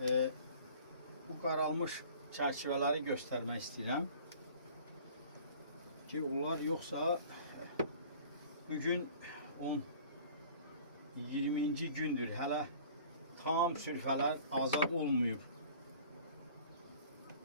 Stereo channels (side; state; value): both; inverted; correlation -0.48